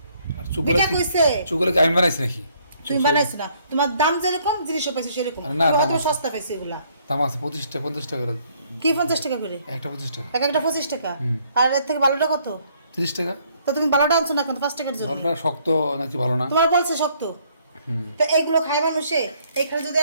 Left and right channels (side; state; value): both; inverted; correlation -0.65